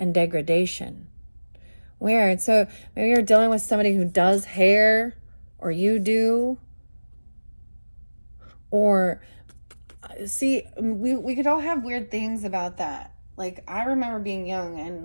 degradation. Weird. So maybe you're dealing with somebody who does hair, or you do. Or, see, we could all have weird things about that. Like, I remember being young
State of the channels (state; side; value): inverted; both; correlation -1.00